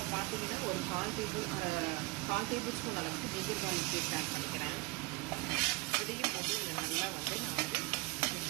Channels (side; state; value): left; quieter; 23.9 dB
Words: பார்த்தீங்கன்னா ஒரு 1/4 டேபிள் ஸ்பூன் அளவுக்கு ஜிஞ்சர் கார்லிக் பேஸ்ட் ஆட் பண்ணிக்கிறேன். இதையும் போட்டு நல்லா வந்து நான் வந்து